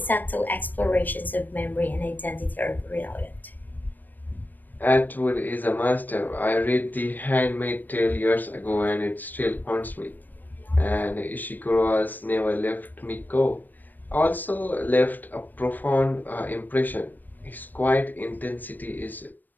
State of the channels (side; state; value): right; late; 0.088 ms